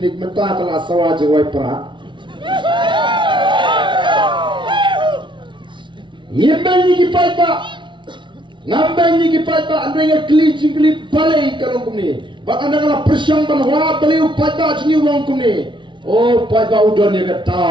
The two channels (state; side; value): late; left; 0.24 ms